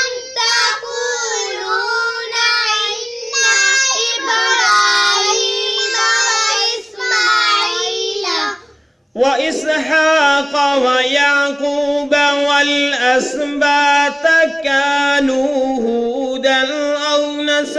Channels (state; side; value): identical; both; correlation 1.00